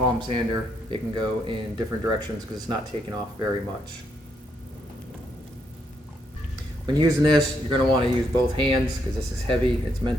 sander, it can go in different directions because it's not taking off very much. When using this, you're going to want to use both hands because this is heavy. It's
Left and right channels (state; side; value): normal; both; correlation 0.76